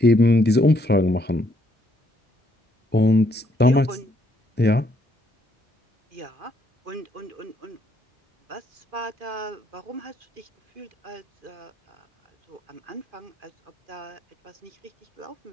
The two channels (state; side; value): normal; both; correlation 0.71